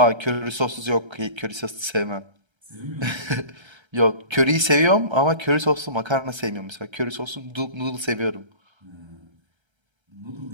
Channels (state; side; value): late; left; 1.3 ms